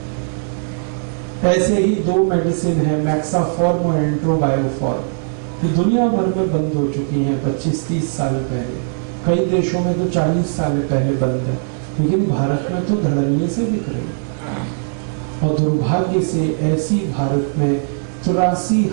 ऐसे ही 2 मेडिसिन है, मैक्साफॉर्म और एंट्रोबायोफॉर्म, कि दुनिया भर में बंद हो चुकी हैं 25-30 साल पहले। कई देशों में तो 40 साल पहले बंद है, लेकिन भारत में तो धड़ल्ले से बिक रही। और दुर्भाग्य से ऐसी भारत में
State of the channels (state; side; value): silent; left; digital silence